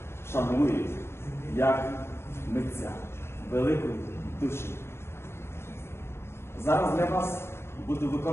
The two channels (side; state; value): right; late; 0.12 ms